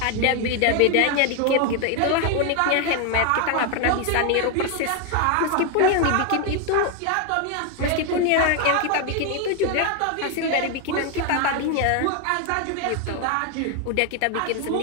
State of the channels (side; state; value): both; different; correlation 0.01